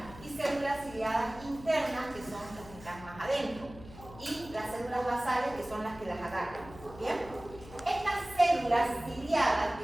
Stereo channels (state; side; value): noise; left; hum, 17 dB below the sound